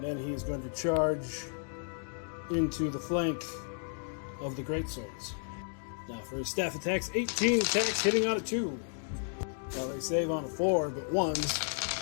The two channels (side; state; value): right; silent; 56 dB below the other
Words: then he is going to charge into the flank of the greatswords. Now for his staff attacks, 18 attacks hitting on a 2. Now they save on a 4, but